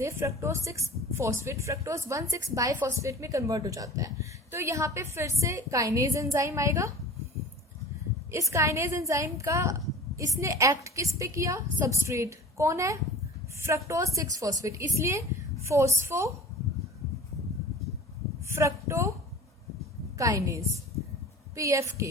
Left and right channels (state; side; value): normal; both; correlation 0.39